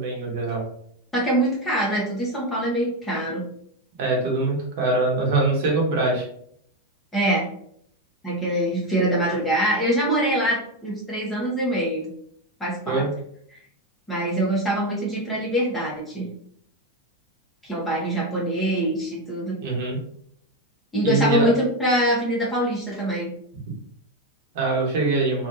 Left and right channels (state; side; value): normal; both; correlation 0.10